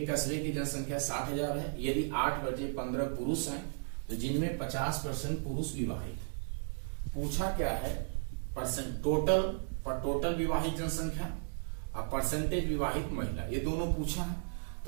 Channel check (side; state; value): left; silent; digital silence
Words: कस्बे की जनसंख्या 60,000 है, यदि 8 बचे 15 पुरुष हैं तो जिनमें 50% पुरुष विवाहित। पूछा क्या है, टोटल विवाहित जनसंख्या और परसेंटेज विवाहित महिला, ये दोनों पूछा है।